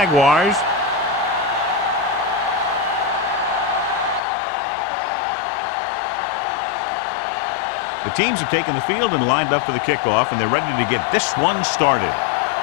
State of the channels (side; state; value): right; drops out; at 4.2 s